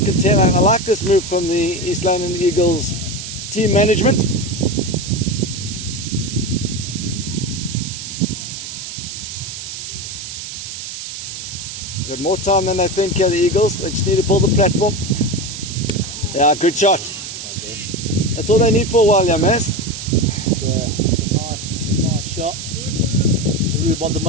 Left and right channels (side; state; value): right; noise; hiss, 8 dB below the sound